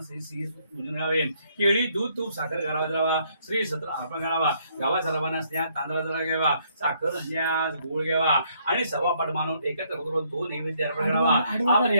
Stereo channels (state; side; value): inverted; both; correlation -0.69